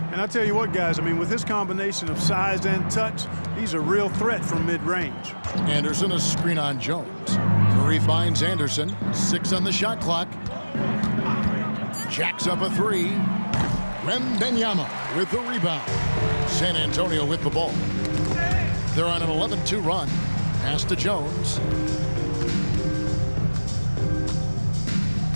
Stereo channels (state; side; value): inverted; both; correlation -1.00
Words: And I tell you what, guys, I mean, with this combination of size and touch, he's a real threat from mid-range. Anderson, a screen on Jones. Curry finds Anderson. 6 on the shot clock. Jacks up a 3. Wembanyama with the rebound. San Antonio with the ball. They're on an 11-2 run. Pass to Jones.